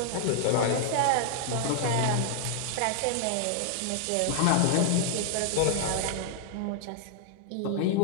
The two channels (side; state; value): both; different; correlation 0.00